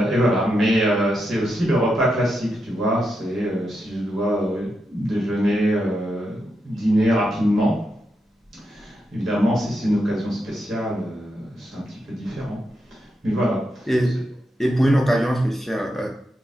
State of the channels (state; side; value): normal; both; correlation 0.85